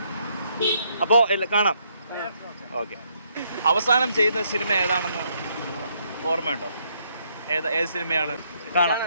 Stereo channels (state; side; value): inverted; both; correlation -0.72